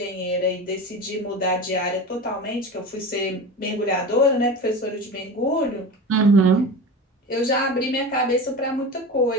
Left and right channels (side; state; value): both; normal; correlation 0.29